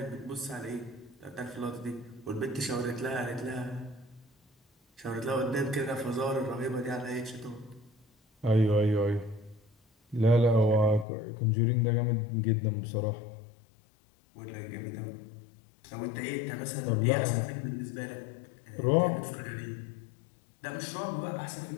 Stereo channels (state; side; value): drops out; right; at 11.1 s